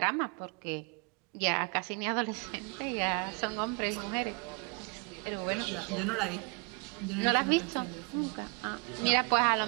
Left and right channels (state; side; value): quieter; left; 32.5 dB